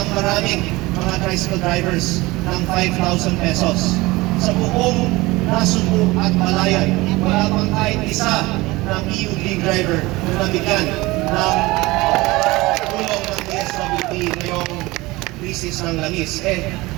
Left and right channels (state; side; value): quieter; left; 21.1 dB